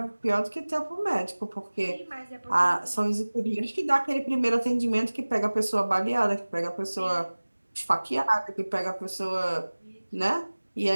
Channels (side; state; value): both; inverted; correlation -1.00